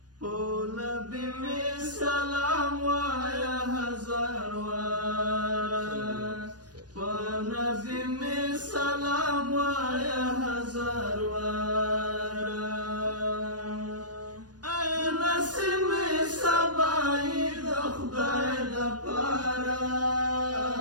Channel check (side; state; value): left; late; 0.69 ms